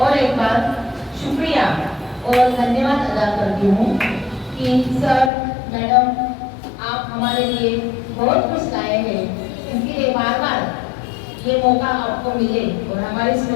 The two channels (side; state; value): right; drops out; at 5.3 s